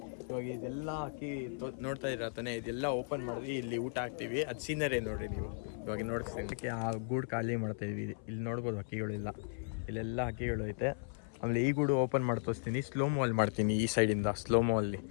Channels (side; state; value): right; silent; 54 dB below the other